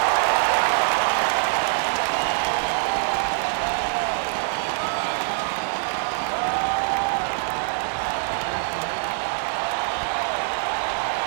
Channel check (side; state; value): left; silent; digital silence